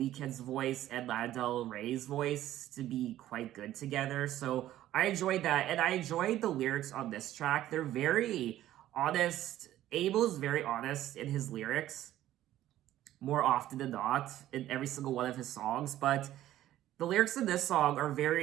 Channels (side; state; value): left; quieter; 13.5 dB